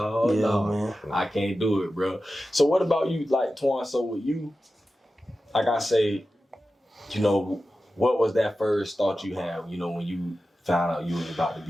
man. I can't do it, bro. So what about you, like Twan? So with you, like I say, what was that first thought you had, when you found out you was about to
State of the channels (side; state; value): both; normal; correlation 0.93